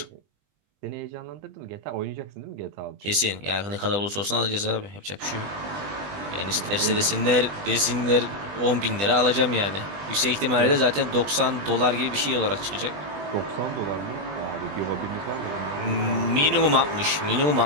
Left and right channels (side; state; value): left; late; 20 ms